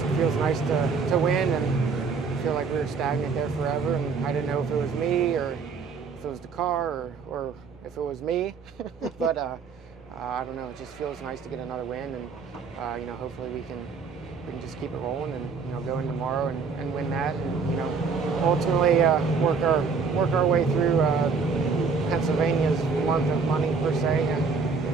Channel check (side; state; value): left; quieter; 5.1 dB